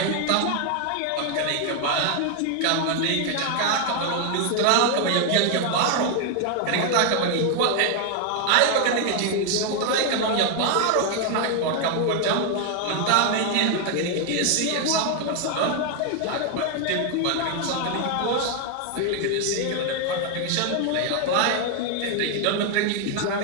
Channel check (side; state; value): both; different; correlation 0.01